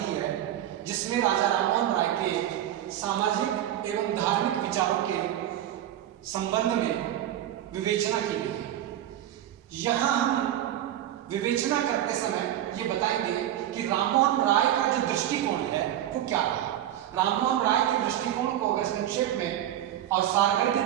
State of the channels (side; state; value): left; quieter; 12.1 dB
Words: ही है, जिसमें राजा राममोहन राय के सामाजिक एवं धार्मिक विचारों के संबंध में विवेचना की गई है। यहाँ हम विवेचना करते समय ये बताएंगे कि राममोहन राय का जो दृष्टिकोण है वो क्या है। राममोहन राय के दृष्टिकोण को अगर संक्षेप में और